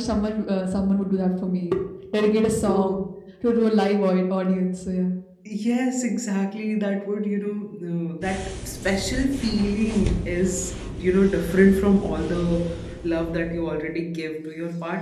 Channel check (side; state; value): both; identical; correlation 1.00